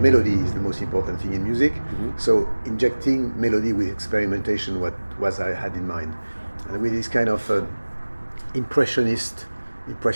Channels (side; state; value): both; inverted; correlation -1.00